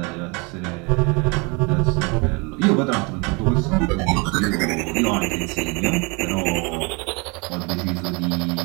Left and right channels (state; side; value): quieter; left; 29.6 dB